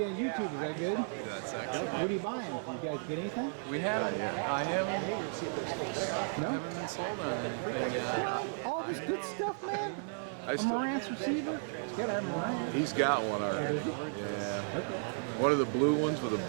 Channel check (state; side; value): silent; left; digital silence